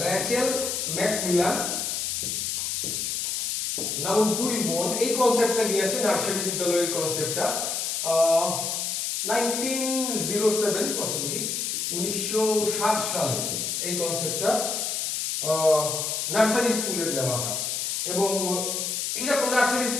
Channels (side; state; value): left; noise; hiss, 1 dB below the sound